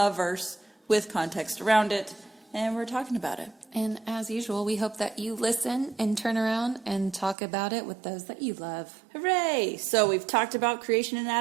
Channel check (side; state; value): left; drops out; at 7.4 s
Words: verse with context around it, and we're talking about it. And as usual, we hope that you listen and turn around and talk about it with those that you love. Hooray! So we've talked about creation in